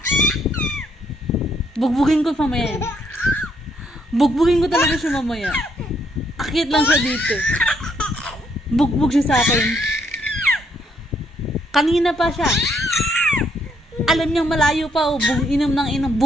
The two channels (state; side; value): normal; both; correlation 0.72